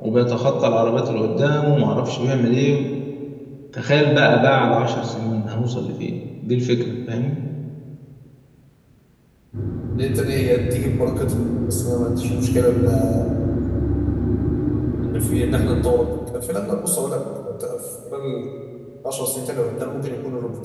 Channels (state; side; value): identical; both; correlation 1.00